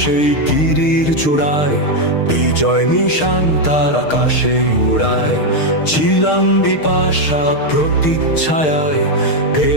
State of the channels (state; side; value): late; right; 6.5 ms